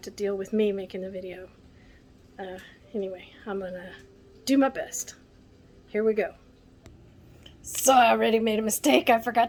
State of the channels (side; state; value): both; identical; correlation 1.00